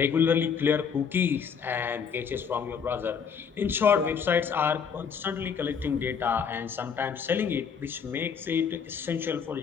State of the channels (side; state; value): right; quieter; 6.7 dB